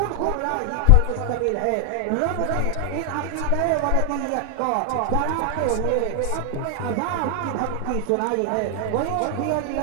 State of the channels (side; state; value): both; different; correlation 0.00